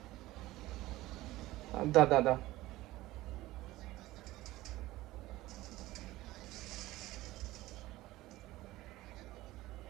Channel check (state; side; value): quieter; left; 17.5 dB